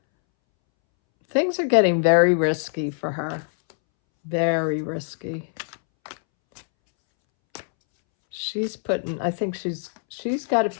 Things are getting very risky for her. Very risky. She's putting, I think she's got to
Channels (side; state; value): right; silent; 63 dB below the other